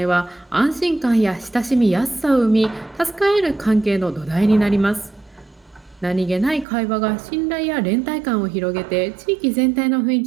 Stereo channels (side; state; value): left; drops out; at 6.7 s